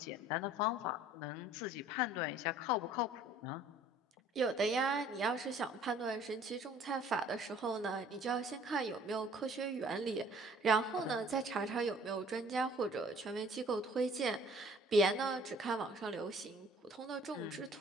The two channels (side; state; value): both; normal; correlation 0.54